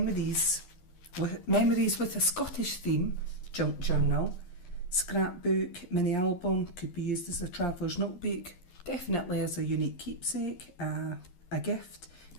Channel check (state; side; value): late; right; 11 ms